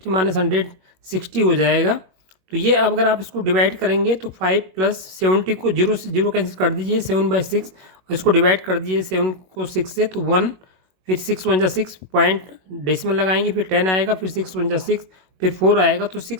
माइनस 160 हो जाएगा। तो ये अगर आप इसको डिवाइड करेंगे तो 5 प्लस 70 को 0 से 0 कैंसिल कर दीजिए, 7/6, और इसको डिवाइड कर दीजिए 7 को 6 से, तो 1, फिर 6 1 जा 6 पॉइंट डेसिमल लगाएंगे, फिर 10 आएगा, फिर 6 1 जा 6, फिर 4 आएगा, तो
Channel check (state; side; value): late; left; 21 ms